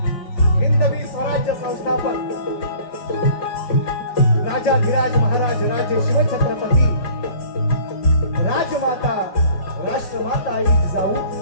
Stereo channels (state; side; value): late; right; 5.1 ms